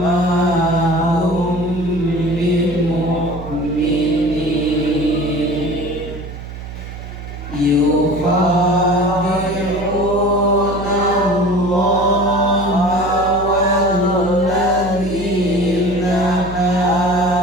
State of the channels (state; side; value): noise; right; hum, 11 dB below the sound